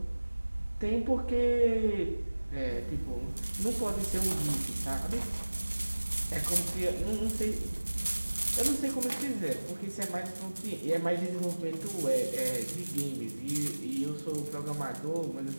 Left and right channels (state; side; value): inverted; both; correlation -1.00